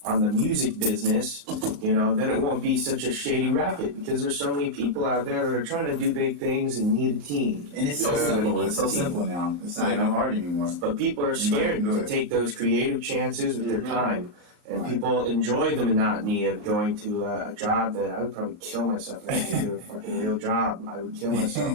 on the music business, then it won't be such a shady racket, because there's so many people out there that are trying to do big things and need a team. And it's so simple. It's so simple now. It's not even hard anymore. But people are scared to take those creative chances with their time. And people enjoy the monotony of going to a job that I would probably kill myself if I had to do a fucking real job. I would kill myself.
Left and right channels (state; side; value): late; left; 34 ms